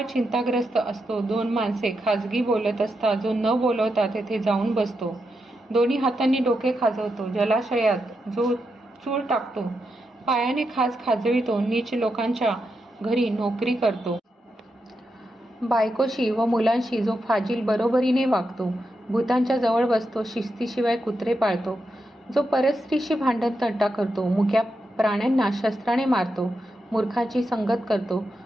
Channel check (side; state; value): both; normal; correlation 0.85